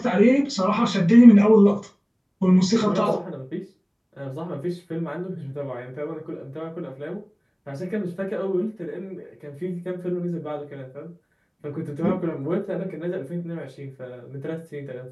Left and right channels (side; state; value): both; identical; correlation 1.00